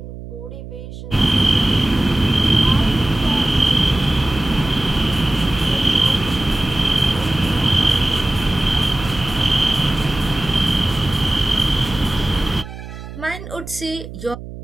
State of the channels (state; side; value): noise; right; hum, 12 dB below the sound